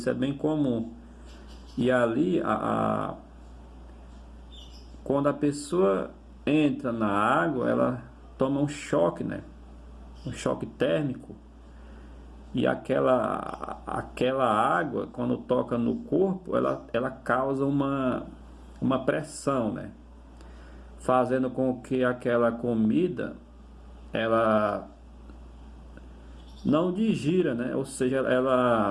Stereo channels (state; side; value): identical; both; correlation 1.00